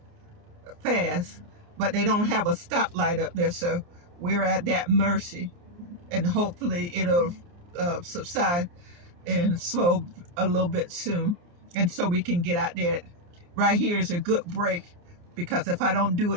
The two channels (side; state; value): left; late; 29 ms